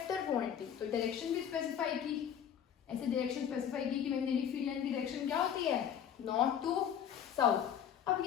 quantity, तो डायरेक्शन भी स्पेसिफाई की, ऐसे डायरेक्शन स्पेसिफाई की कि मैग्नेटिक फील्ड लाइन की डायरेक्शन क्या होती है, नॉर्थ टू साउथ। अब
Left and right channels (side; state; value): right; quieter; 8.9 dB